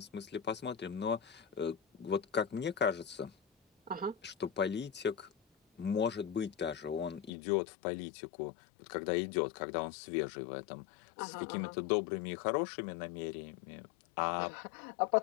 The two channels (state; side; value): drops out; right; at 7.3 s